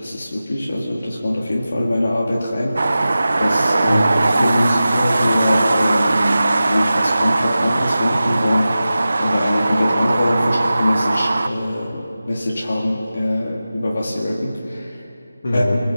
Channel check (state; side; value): inverted; both; correlation -0.94